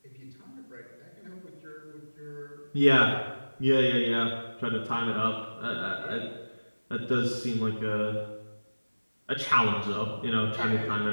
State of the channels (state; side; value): inverted; both; correlation -1.00